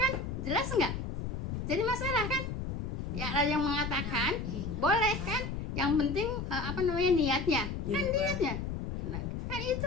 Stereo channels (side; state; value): left; noise; rumble, 4 dB below the sound